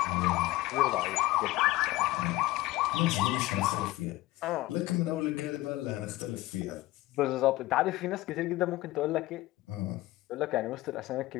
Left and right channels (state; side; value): quieter; right; 17.9 dB